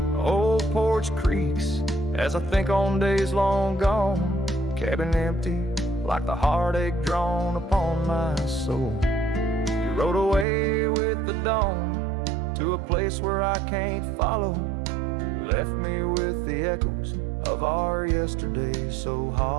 Old porch creaks as I think on days long gone, cabin empty like the heartache drawn upon my soul. You rode away with the dawn to a place where I can't follow, left me with the echoes of our yesterday so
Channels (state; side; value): drops out; left; at 10.5 s